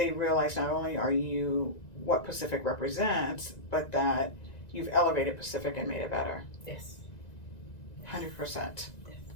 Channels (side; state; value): right; late; 1.9 ms